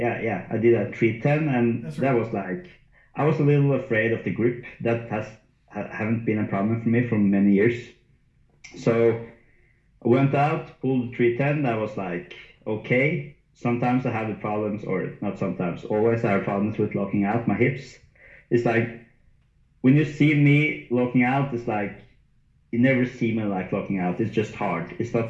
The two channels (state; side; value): identical; both; correlation 1.00